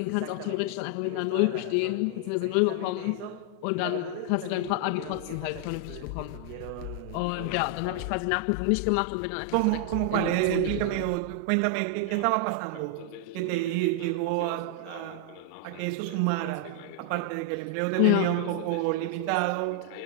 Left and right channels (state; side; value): different; both; correlation 0.00